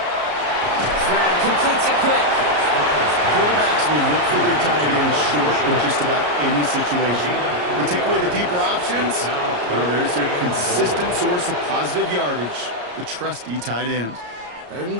Stroud completes it quick. Quarterbacks will look for their tight end short in just about any situation. They take away the deeper options. Well, there's their consistent source of positive yardage, the trusty tight end. Third and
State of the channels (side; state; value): left; late; 34 ms